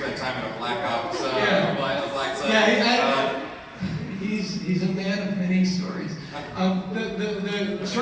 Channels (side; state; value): both; identical; correlation 1.00